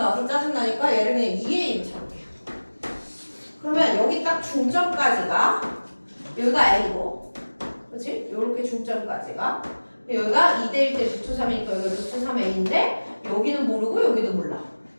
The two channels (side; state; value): both; inverted; correlation -1.00